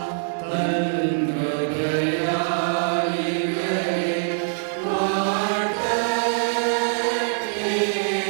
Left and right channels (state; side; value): silent; left; digital silence